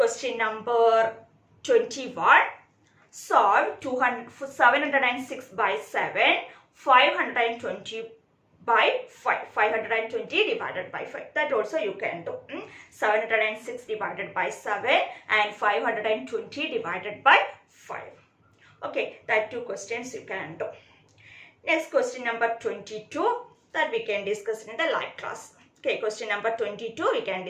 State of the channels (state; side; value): identical; both; correlation 1.00